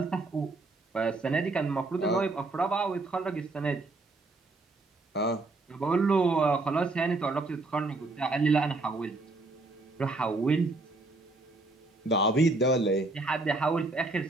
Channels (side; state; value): left; quieter; 3.2 dB